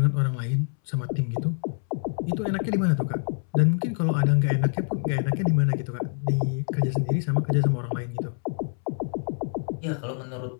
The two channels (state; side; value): silent; right; 61 dB below the other